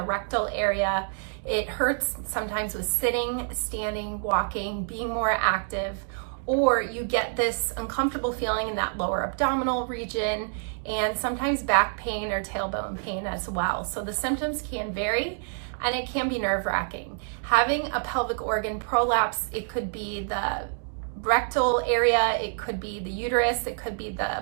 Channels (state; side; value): silent; left; digital silence